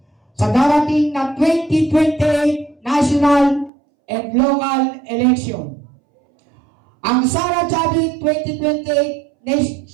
sa darating na 2028 national and local election. Ang Sara Chavit 2028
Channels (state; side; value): drops out; left; at 3.7 s